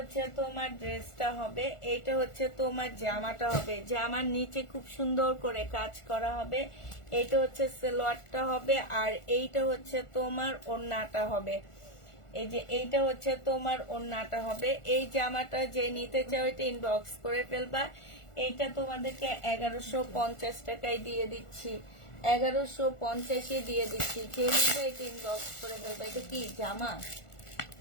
তোমার ড্রেসটা হবে, এটা হচ্ছে তোমার জামাটা হবে। জামার নিচে খুব সুন্দর করে কাজ করা হবে। এটা হচ্ছে সালোয়ারটা হবে, আর এইটা হচ্ছে তোমার ওড়নাটা হবে। এই যে এইটা হচ্ছে তোমার ওড়নাটা হবে। এই জামাটা যে নিতে চাও এটা ইনবক্স করে ফেলবা। এইটা তোমাদেরকে 1150 টাকায় দিয়ে দিচ্ছি, 1150-এ দিয়ে দিচ্ছি। যে নিবে এটা ইনবক্স করে ফেলবা। এটা কি জামা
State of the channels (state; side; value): late; right; 1.4 ms